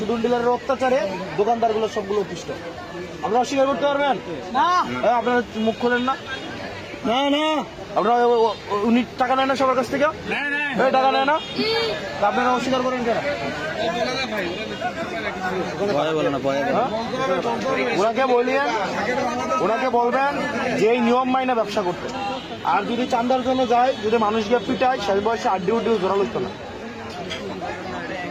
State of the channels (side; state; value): both; identical; correlation 1.00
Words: ডিলারের অত্যাচারে দোকানদারগুলো সবগুলো অতিষ্ঠ। আপনারা অস্বীকার করতে পারবেন না? আপনারা মুখ খোলেন না? না না, আপনারা উনি টাকা নেয় না সবার কাছ থেকে? টাকা নেয় না, আপনারা অস্বীকার করেন কেন? ওনাকে বলবেন যে এই নিয়ম মাইনা ব্যবসা করতে। আর যদি চান্দার জন্য যায়, যদি মানুষকে পিটায়, শেষ বয়সে আড্ডি উড্ডি জোরা লইতো না।